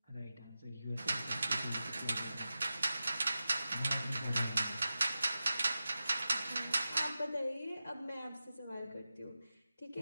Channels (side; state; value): both; inverted; correlation -0.93